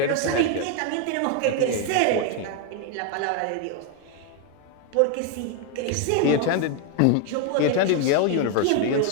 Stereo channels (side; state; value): both; different; correlation 0.01